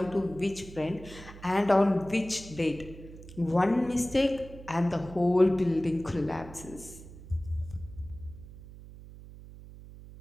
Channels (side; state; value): right; noise; hum, 16 dB below the sound